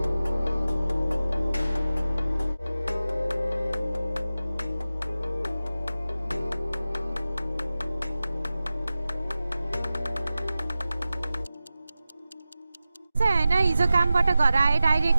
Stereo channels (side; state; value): both; inverted; correlation -0.95